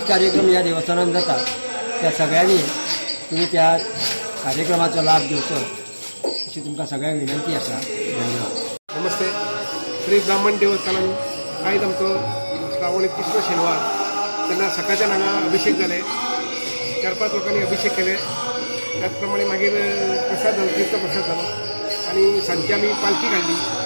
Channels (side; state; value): both; inverted; correlation -1.00